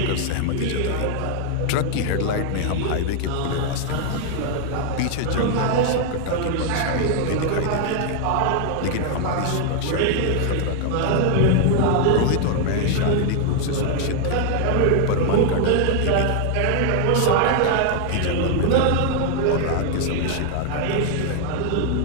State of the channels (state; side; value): different; both; correlation 0.00